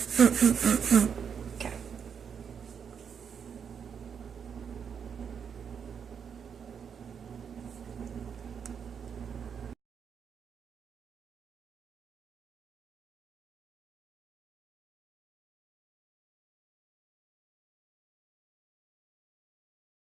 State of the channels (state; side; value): quieter; left; 7.2 dB